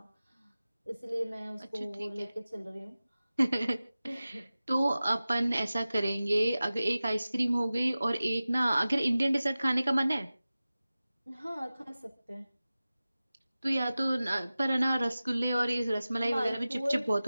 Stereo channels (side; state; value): both; inverted; correlation -0.96